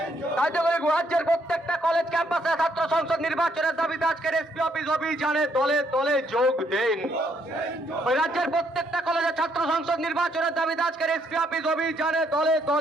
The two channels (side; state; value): both; normal; correlation 0.71